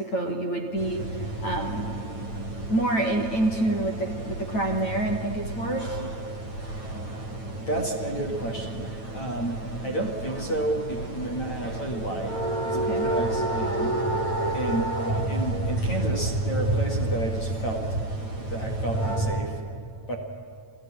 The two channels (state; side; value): late; right; 9.0 ms